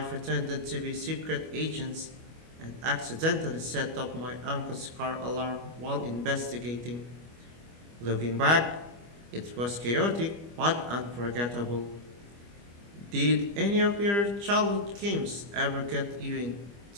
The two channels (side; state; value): left; late; 25 ms